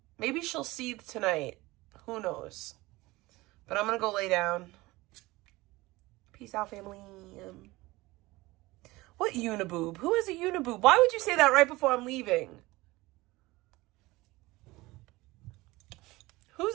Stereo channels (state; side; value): quieter; left; 20.5 dB